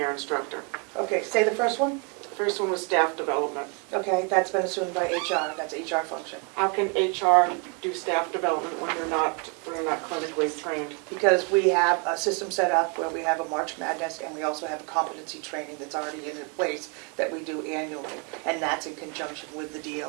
instructor. Okay, say the first one. First one was staff development. Okay, that's been assumed by HR, that's HR function. How can HR do staff development when they're not clinically trained? Because we have a system set up where we have a March Madness and we also have a competency training that's already in place that we do annually. And that's in conjunction with the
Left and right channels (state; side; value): quieter; left; 33.8 dB